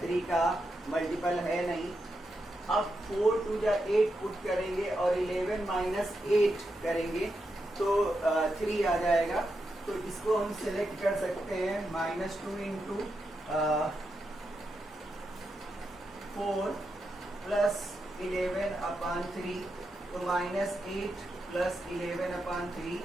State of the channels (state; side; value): normal; both; correlation 0.86